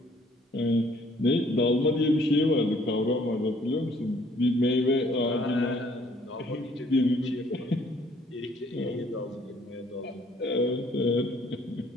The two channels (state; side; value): normal; both; correlation 0.61